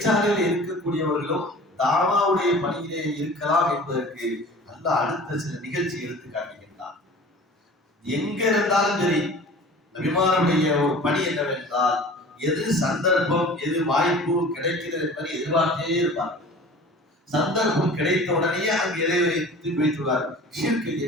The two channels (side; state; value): both; normal; correlation 0.42